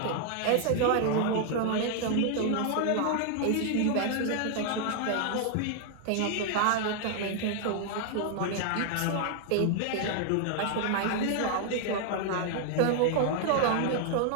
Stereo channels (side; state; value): both; different; correlation 0.00